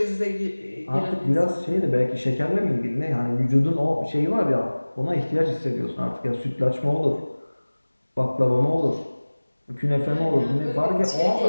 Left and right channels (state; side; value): inverted; both; correlation -1.00